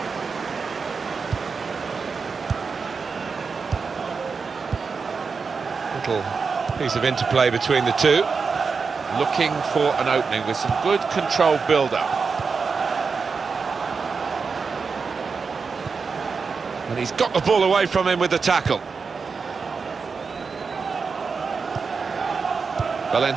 Little piece of interplay between the two, looking for an opening with some good controlled build-up. And he's got the ball away from him with the tackle.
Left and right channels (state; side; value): quieter; left; 5.1 dB